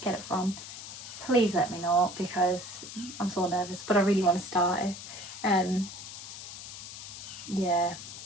it from, please let me know, because I'm so nervous, but I really want to start it. Yeah.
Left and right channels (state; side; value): noise; left; hiss, 11 dB below the sound